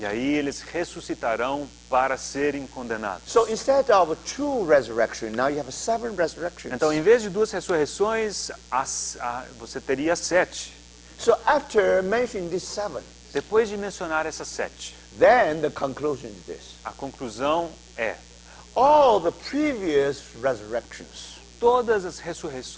aí eles ressuscitarão para serem condenados. So instead of 2 resurrections, now you have 7 resurrections. Então, em vez de 2 ressurreições, você teria 7. So after mentioning these 7, Depois de mencionar essas 7, then the conclusion is this. a conclusão é: All the previous resurrections, todas as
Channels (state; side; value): identical; both; correlation 1.00